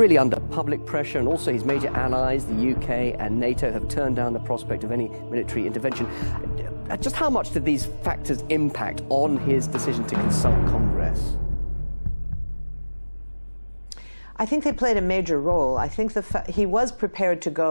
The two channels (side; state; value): both; inverted; correlation -1.00